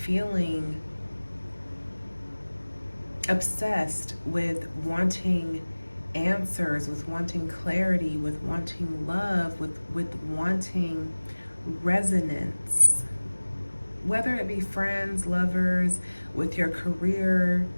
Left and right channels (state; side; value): inverted; both; correlation -1.00